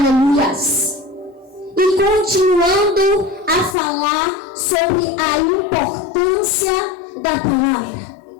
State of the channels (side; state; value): right; drops out; at 3.8 s